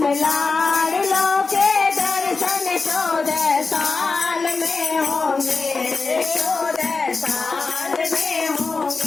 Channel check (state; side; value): quieter; right; 4.2 dB